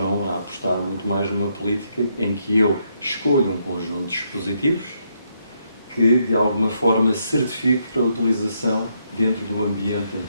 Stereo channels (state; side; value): inverted; both; correlation -0.76